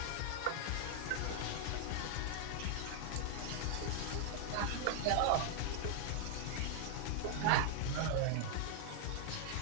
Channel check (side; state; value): both; different; correlation -0.01